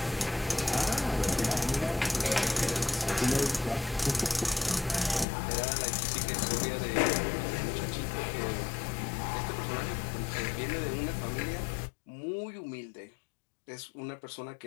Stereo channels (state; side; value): drops out; right; at 5.2 s